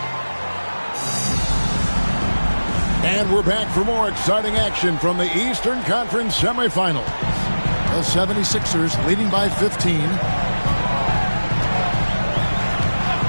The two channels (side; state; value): both; inverted; correlation -1.00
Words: And we're back for more exciting action from the Eastern Conference semifinals. The 76ers leading by 15.